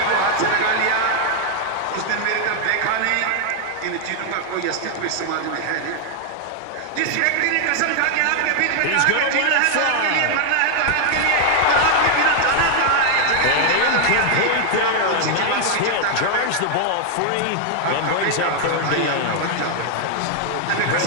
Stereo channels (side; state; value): both; different; correlation 0.00